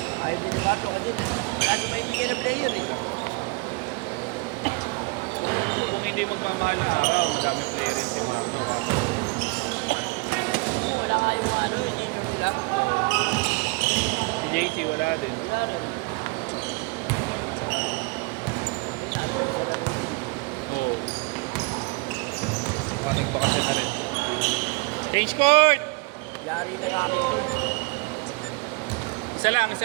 Ayaw din ni Marlo kasi wala siya maibigyan na player eh. Kung hindi magmamahal na araw, madami player yan si Marco. Wala nga yung ano, yung senior nila. Si JC wala din. Wala rin. Oo. Maraming bakasyon na rin. Change court! Yari na sa akin yun. Isa lang,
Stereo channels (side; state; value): left; quieter; 28.9 dB